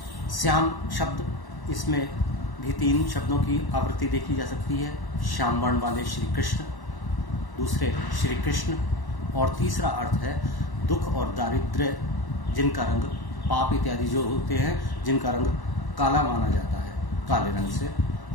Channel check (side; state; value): right; late; 1.1 ms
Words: श्याम शब्द, इसमें भी तीन शब्दों की आवृत्ति देखी जा सकती है। श्याम वर्ण वाले श्री कृष्ण, दूसरे श्री कृष्ण, और तीसरा अर्थ है दुख और दारिद्र्य, जिनका रंग पाप इत्यादि जो होते हैं, जिनका रंग काला माना जाता है, काले रंग से।